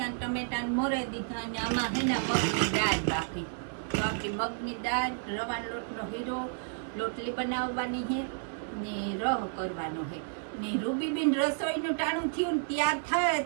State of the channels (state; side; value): silent; left; digital silence